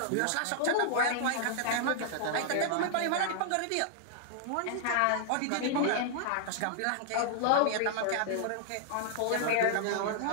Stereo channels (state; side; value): different; both; correlation -0.01